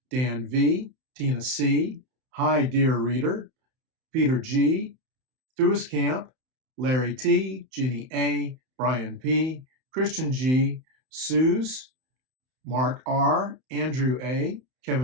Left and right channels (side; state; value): left; late; 31 ms